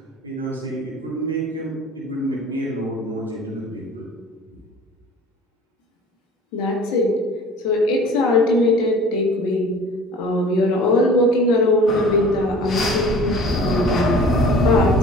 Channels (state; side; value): normal; both; correlation 0.45